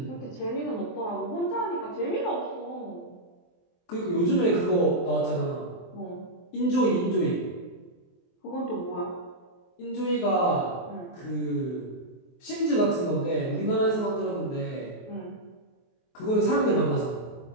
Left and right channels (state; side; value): late; right; 23 ms